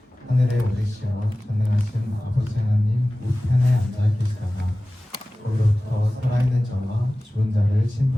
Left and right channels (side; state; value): both; normal; correlation 0.97